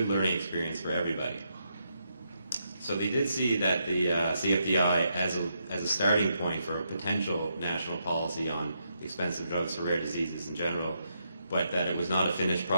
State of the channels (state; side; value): inverted; both; correlation -0.80